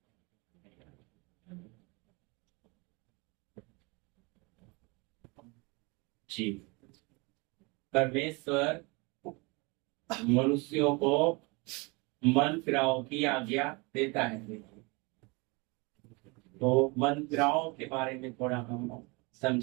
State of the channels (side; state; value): left; quieter; 27.9 dB